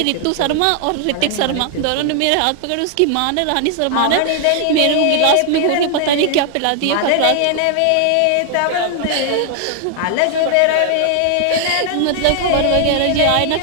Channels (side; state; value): both; different; correlation 0.00